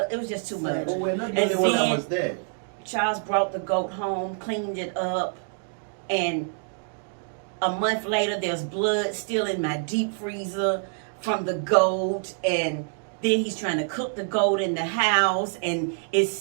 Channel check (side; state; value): left; silent; 61 dB below the other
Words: it was just too much. But we're not the only one that was there. Charles brought the goat home, cleaned it up, and a month later, there's blood still in my deep freezer from the goat, and then he's trying to cook the goat in the house, and it's